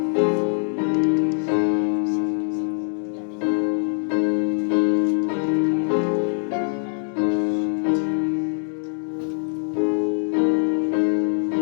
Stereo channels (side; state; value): right; silent; digital silence